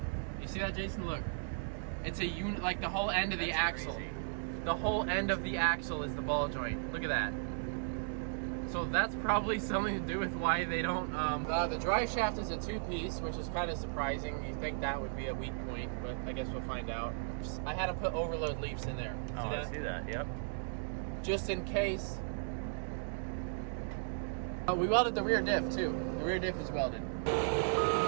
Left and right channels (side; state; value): left; silent; digital silence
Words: You see that, Jason? Look, it's a unit. Like the whole end of the axle. Crazy. The whole end of the axle is the ball joint. Look at that. So that's probably something to do with why they don't. The drive shaft is a 2-piece, which is kind of surprising. You think that would be a weak point, but I guess we'll find out. I had to put overload leaves in there. Oh, I see that. Yep. Just in case. We welded the rear diff too. The rear diff is welded.